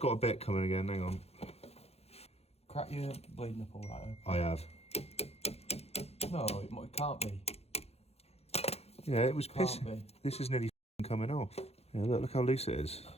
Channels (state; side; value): late; right; 0.30 ms